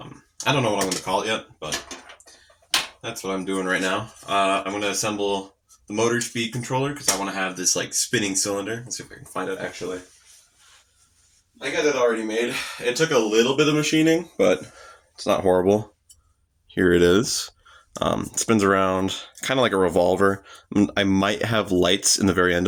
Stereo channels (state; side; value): identical; both; correlation 1.00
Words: don't know what I'm gonna call it yet, but that's what I'm doing right now. I'm gonna assemble the motor speed controller because I want to have this like spinning cylinder. Let's see if I can find it actually. I got it already made. It took a little bit of machining, but it's not horrible. Here it is. It spins around kind of like a revolver. I might have lights in the very